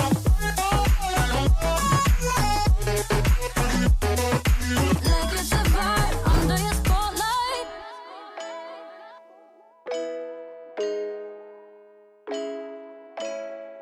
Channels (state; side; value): identical; both; correlation 1.00